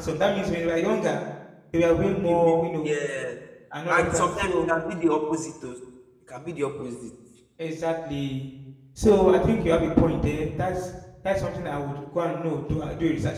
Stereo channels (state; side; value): identical; both; correlation 1.00